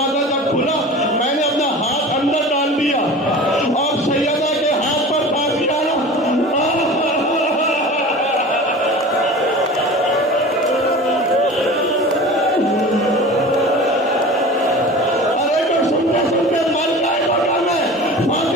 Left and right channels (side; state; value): both; normal; correlation 0.37